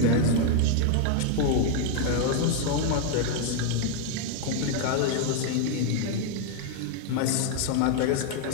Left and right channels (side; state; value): both; different; correlation 0.00